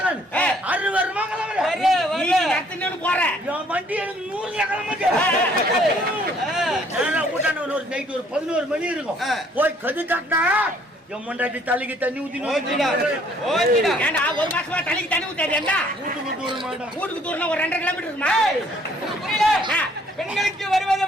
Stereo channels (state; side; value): normal; both; correlation 0.62